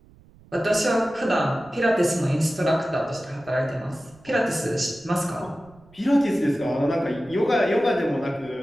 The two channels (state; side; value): noise; right; rumble, 26 dB below the sound